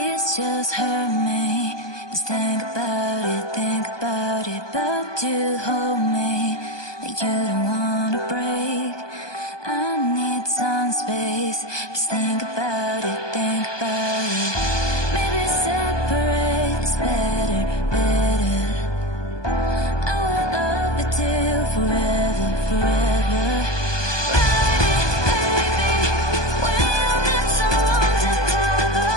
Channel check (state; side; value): late; right; 1.2 ms